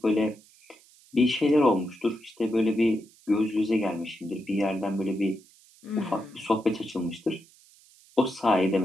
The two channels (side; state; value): right; noise; hiss, 27 dB below the sound